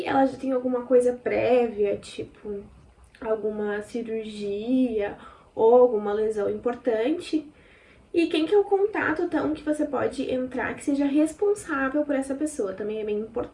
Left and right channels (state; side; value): identical; both; correlation 1.00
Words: ela já tem alguma coisa prévia, tipo alguma cirurgia ou alguma lesão importante. E quem que é o contato, então, que você pode entrar que seja responsável por essa pessoa, também é bem